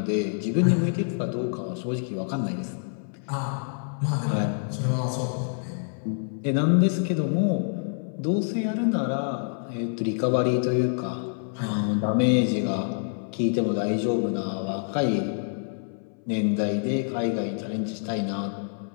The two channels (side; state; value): right; silent; 60 dB below the other